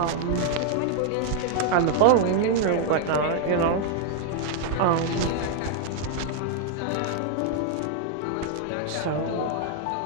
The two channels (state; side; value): different; both; correlation 0.00